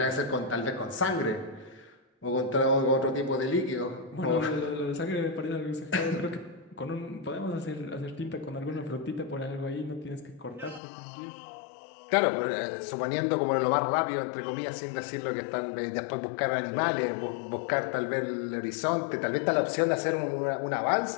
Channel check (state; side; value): drops out; right; at 10.8 s